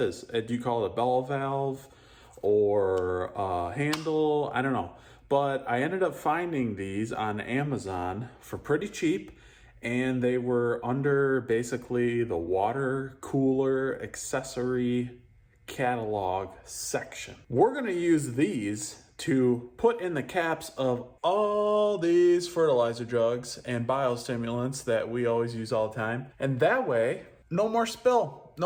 Do you call it a bell valve or a handle? I don't know. But I ended up finding these on Amazon for pretty cheap. And they were under basically the water cooler accessory catalog section. We're gonna use these to put in the caps of all these fertilizer jugs and biostimulants that we always use all the time. And that way, no more spill.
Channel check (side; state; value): both; identical; correlation 1.00